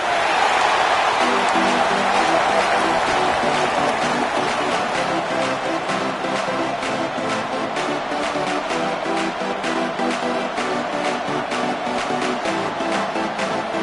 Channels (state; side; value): identical; both; correlation 1.00